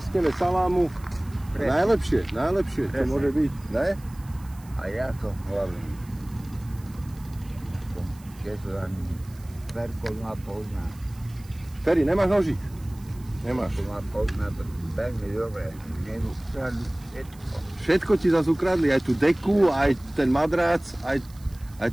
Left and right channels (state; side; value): noise; right; hiss, 25 dB below the sound